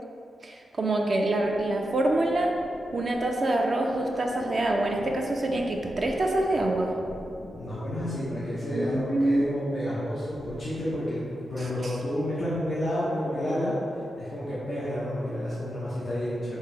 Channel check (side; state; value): both; normal; correlation 0.88